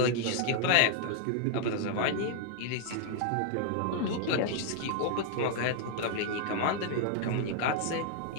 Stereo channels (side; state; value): both; different; correlation 0.00